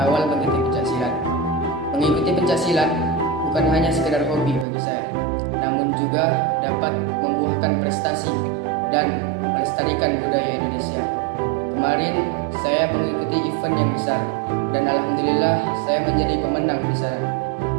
mengikuti pencaksilat. Mengikuti pencaksilat bukan hanya sekedar hobi bagi saya, namun juga dapat membuahkan prestasi dan melestarikan budaya Indonesia. Kemarin saya mengikuti event yang besar dan alhamdulillah saya menjadi pemenang di sana.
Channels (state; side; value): drops out; left; at 4.7 s